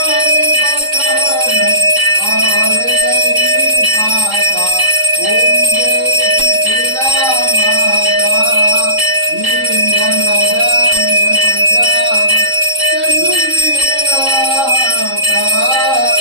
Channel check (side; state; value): left; late; 3.7 ms